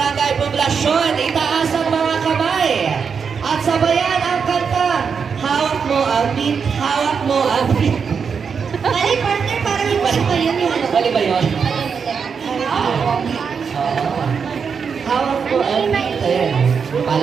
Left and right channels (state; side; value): quieter; left; 6.2 dB